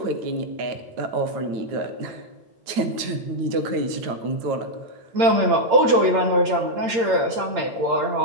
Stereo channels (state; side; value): late; left; 8.7 ms